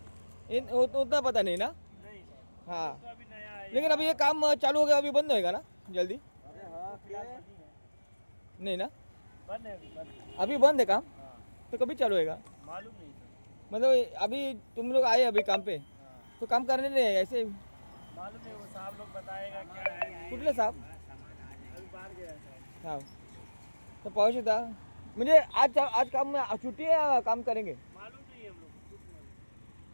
उतना पता नहीं ना. हाँ, लेकिन अभी ये काम चालू हो गया, अभी बंद होएगा ना जल्दी? नहीं ना, अभी बंद है काम. तो कभी चालू होएगा मालूम नहीं. मतलब अभी तुम लोग आए अभी काम पे, तो काम करने नहीं है ऐसे? मालूम नहीं, वो साहब लोग बताएगा क्या है. कुठले साहब? अभी बाहर गया है. हाँ, तो पाहू शकता म्हणजे आज काम में छुट्टी है, काम करेंगे मालूम नहीं हम लोग.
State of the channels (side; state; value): both; inverted; correlation -1.00